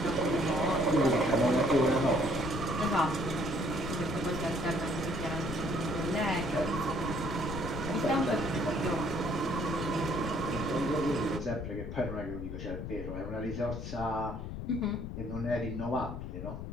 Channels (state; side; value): noise; left; rumble, 6 dB below the sound